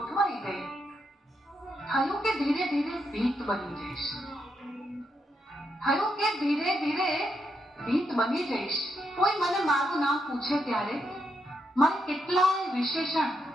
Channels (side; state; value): both; normal; correlation 0.81